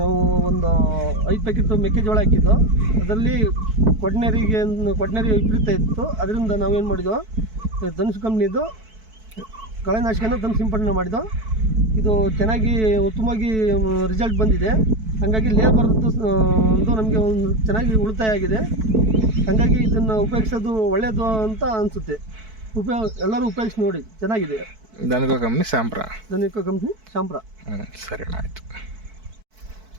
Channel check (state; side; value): late; left; 4.6 ms